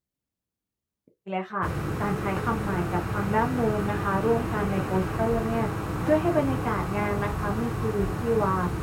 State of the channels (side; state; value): both; identical; correlation 1.00